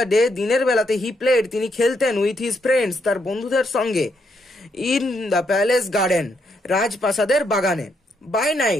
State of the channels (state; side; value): normal; both; correlation 0.77